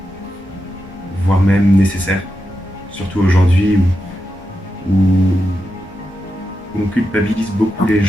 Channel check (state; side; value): normal; both; correlation 0.88